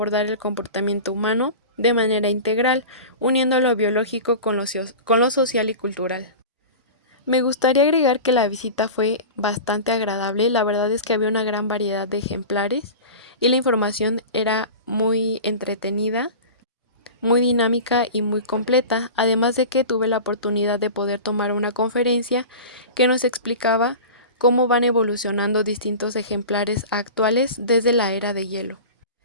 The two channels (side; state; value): both; inverted; correlation -0.33